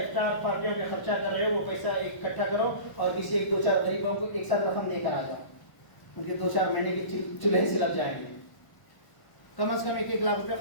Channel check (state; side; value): late; right; 1.0 ms